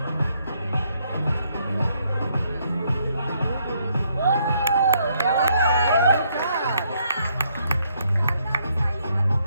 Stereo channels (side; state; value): both; inverted; correlation -0.72